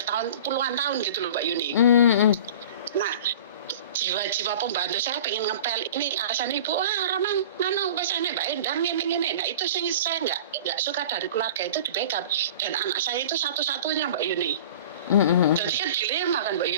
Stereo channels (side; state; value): both; inverted; correlation -0.40